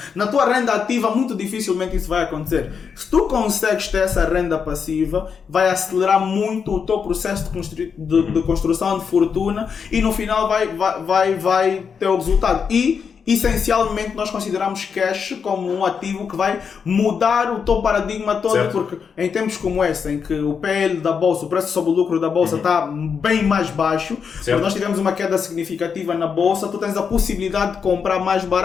Na tua renda ativa, muito dificilmente isso vai acontecer. Se tu consegues ter essa renda passiva, vai acelerar muito o teu processo de construção de fortuna e no final vai ter o resultado. E essencialmente nós consideramos cash como um ativo que vai mudar o teu paradigma todo, porque em tempos como este, em que o PL da bolsa, o preço sobre o lucro da bolsa está bem mais baixo, porque nós tivemos uma queda significativa na bolsa, tu tens a possibilidade de comprar mais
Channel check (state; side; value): quieter; right; 6.3 dB